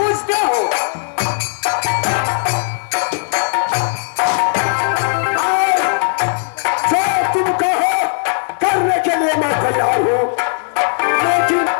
हो। जो तुम कहो करने के लिए मैं तैयार हूँ, लेकिन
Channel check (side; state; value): right; silent; 68 dB below the other